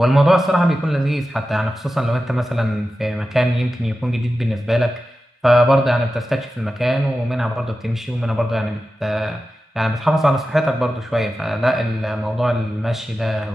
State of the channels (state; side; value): normal; both; correlation 0.93